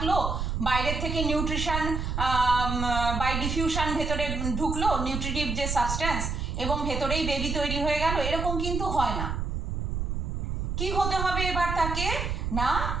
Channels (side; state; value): right; noise; rumble, 2 dB below the sound